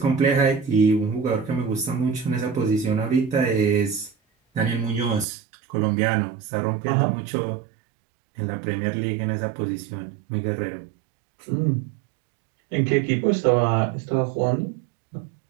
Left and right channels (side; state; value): left; drops out; at 5.2 s